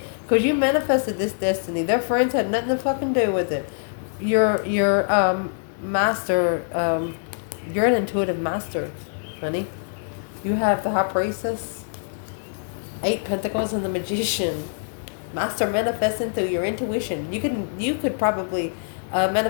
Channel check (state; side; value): silent; right; digital silence